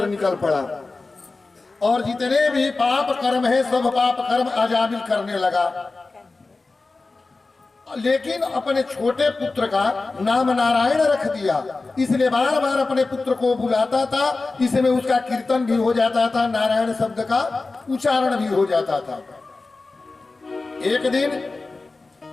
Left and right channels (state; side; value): quieter; right; 3.6 dB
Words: निकल पड़ा और जितने भी पाप कर्म है सब पाप कर्म अजामिल करने लगा। लेकिन अपने छोटे पुत्र का नाम नारायण रख दिया, इसलिए बार बार अपने पुत्र को बुलाता था। इसमें उसका कीर्तन भी हो जाता था, नारायण शब्द का उच्चारण भी हो जाता था। एक दिन